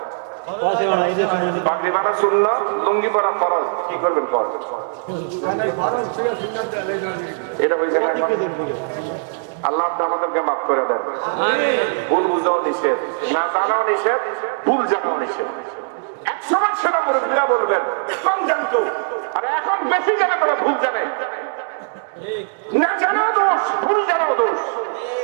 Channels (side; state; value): left; silent; digital silence